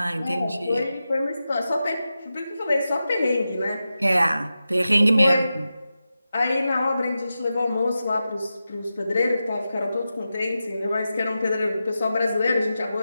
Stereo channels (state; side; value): inverted; both; correlation -0.91